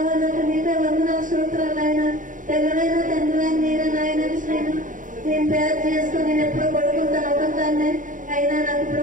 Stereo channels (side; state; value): left; late; 0.38 ms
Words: నాకు నీకే వందనాలు సూత్రాలు ఆయన తెల్లనైన తండ్రి మీరే నాయన నేను తయారు చేసుకుని నేను ఎప్పుడు పడుకుంటాను ఒకదాన్ని. అయినా నాకు ఇప్పుడు